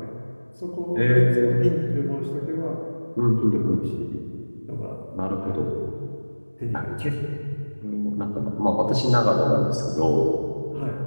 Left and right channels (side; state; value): both; inverted; correlation -1.00